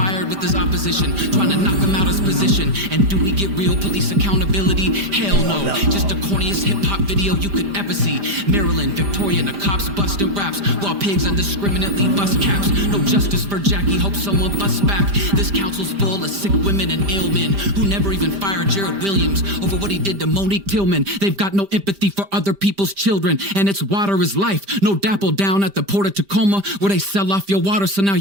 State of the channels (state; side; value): late; left; 5.0 ms